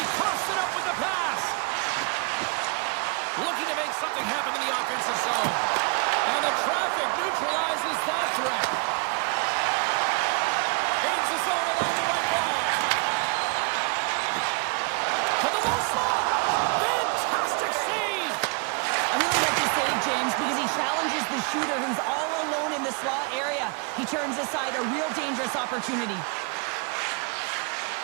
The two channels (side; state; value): left; quieter; 33.8 dB